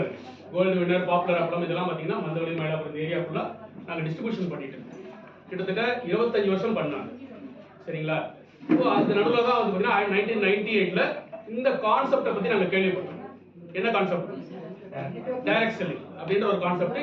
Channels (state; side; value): identical; both; correlation 1.00